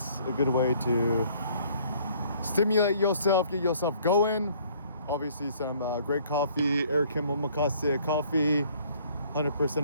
a good way to stimulate yourself, get yourself going. Obviously some great coffee, Eric Kim Omakase coffee,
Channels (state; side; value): inverted; both; correlation -0.59